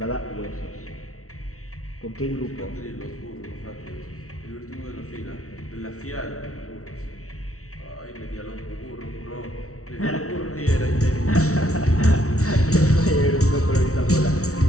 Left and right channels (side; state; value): right; late; 0.64 ms